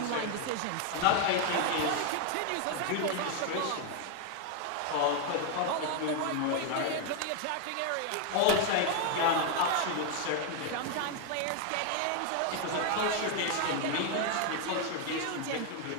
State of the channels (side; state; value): both; different; correlation 0.01